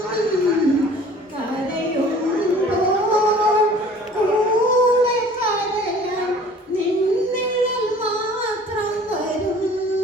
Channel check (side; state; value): both; normal; correlation 0.49